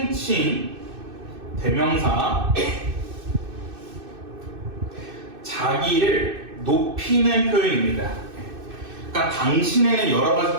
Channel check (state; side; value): late; left; 2.6 ms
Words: 대명사 자기를 높이는 표현입니다. 그러니까 당신에는 여러